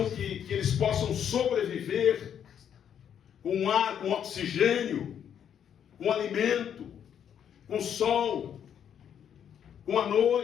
que eles possam sobreviver, com ar, com oxigênio, com alimento, com sol, com a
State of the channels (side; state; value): right; quieter; 8.8 dB